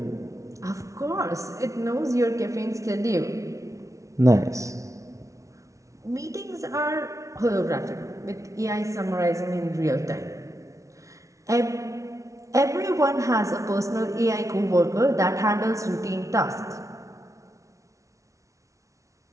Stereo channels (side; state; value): left; late; 0.15 ms